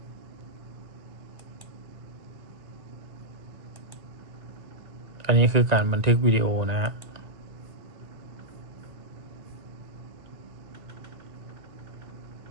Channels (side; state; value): left; late; 1.9 ms